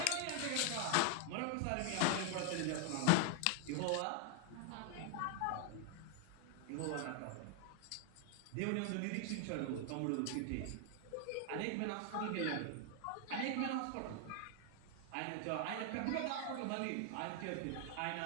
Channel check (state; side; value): different; both; correlation 0.00